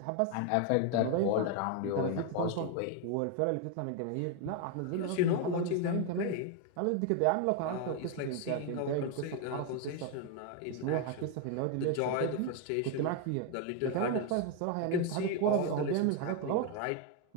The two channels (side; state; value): both; different; correlation 0.01